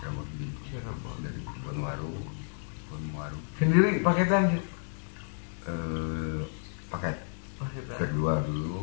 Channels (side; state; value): right; silent; digital silence